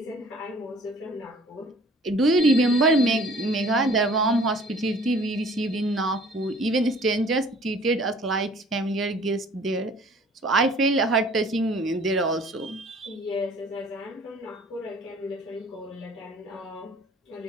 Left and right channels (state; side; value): normal; both; correlation 0.52